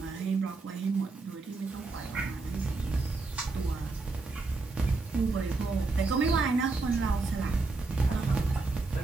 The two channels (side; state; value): left; quieter; 3.6 dB